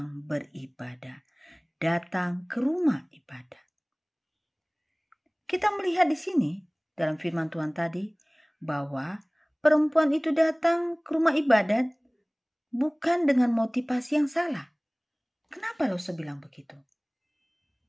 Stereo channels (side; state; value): both; identical; correlation 1.00